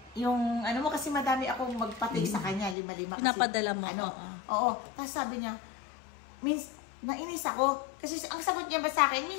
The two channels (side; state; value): right; drops out; at 2.8 s